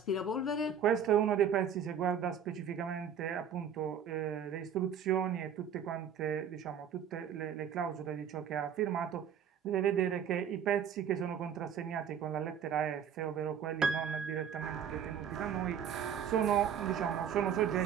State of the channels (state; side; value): quieter; left; 7.8 dB